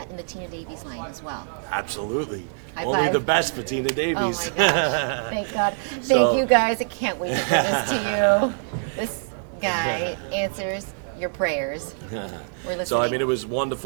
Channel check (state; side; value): silent; left; digital silence